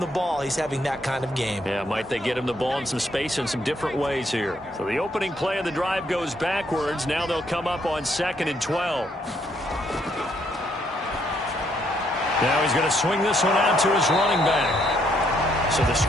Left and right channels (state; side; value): normal; both; correlation 0.71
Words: ball. He's having that kind of game. Yeah, might they get him the ball in some space in some different ways here. So the opening play of the drive goes backwards. Now they'll come up on 2nd and 12. Now he's going to swing this one out to his running back. So the